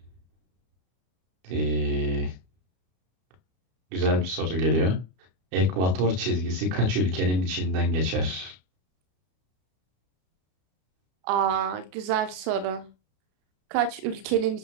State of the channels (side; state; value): left; late; 33 ms